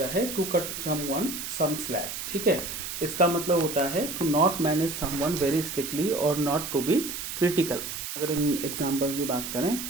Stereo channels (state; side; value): noise; right; hiss, 6 dB below the sound